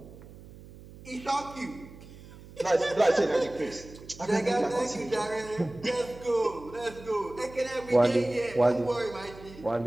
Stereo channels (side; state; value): right; noise; hum, 18 dB below the sound